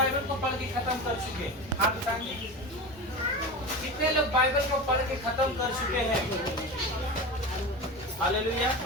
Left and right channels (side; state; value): both; normal; correlation 0.26